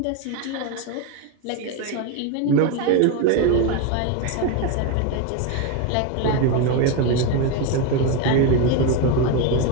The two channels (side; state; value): both; different; correlation 0.03